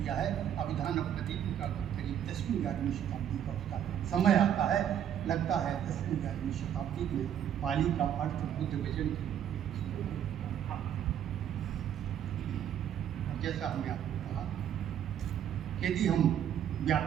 है। अभिधान प्रदीप का करीब 10वीं 11वीं शताब्दी का उसका समय आता है, लगता है 10वीं 11वीं शताब्दी में पाली का अर्थ बुद्ध वचन। और जैसा हमने आपको कहा, यदि हम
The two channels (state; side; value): quieter; left; 9.8 dB